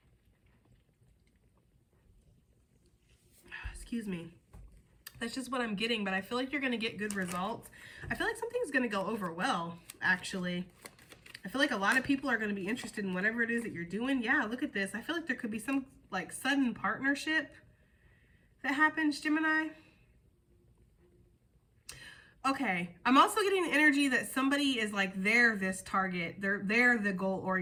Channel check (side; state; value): both; identical; correlation 1.00